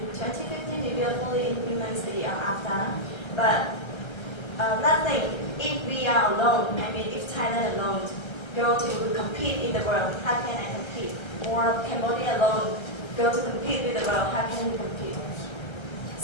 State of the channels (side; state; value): right; late; 1.3 ms